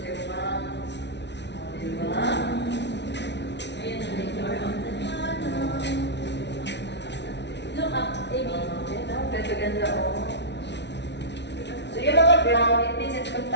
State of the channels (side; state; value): right; late; 0.50 ms